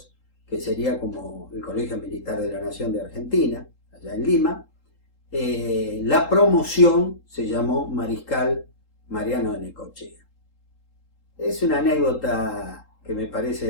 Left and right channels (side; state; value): right; late; 3.8 ms